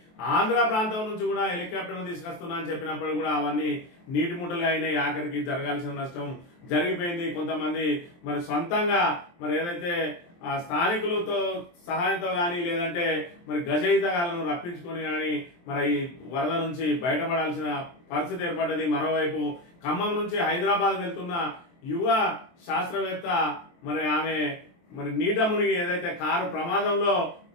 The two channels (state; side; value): late; right; 23 ms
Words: ఆంధ్ర ప్రాంతం నుంచి కూడా హెలికాప్టర్ తీసుకొస్తున్నా అని చెప్పినప్పుడు కూడా అవన్నీ నీటి ముట్టలుగా అయినాయి. ఆఖరికి జరగాల్సిన నష్టం జరిగిపోయింది. కొంతమంది మరి సొంతంగా మరి ఏదైతే స్థానికులతో సహాయంతో కానీ లేదంటే మరి గజయితగాలను రప్పించుకొని కానీ మరి ఈ వరద నుంచి బయటపడాల్సిన పరిస్థితి ఏర్పడ్డది. మరోవైపు ఖమ్మం నుంచి హైదరాబాద్ వెళ్తున్న యువ శాస్త్రవేత్త మరి ఆమె మరి నీట మునిగి ఏదైతే కారు ప్రమాదంలో